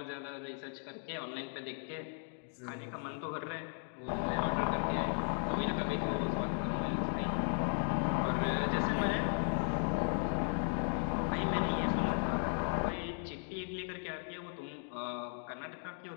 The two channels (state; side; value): silent; right; 54 dB below the other